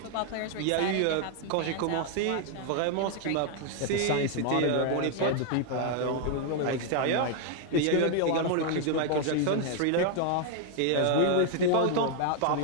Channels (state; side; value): different; both; correlation 0.00